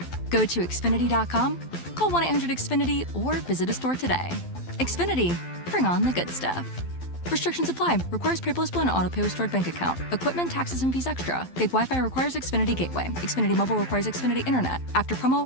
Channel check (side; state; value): right; late; 12 ms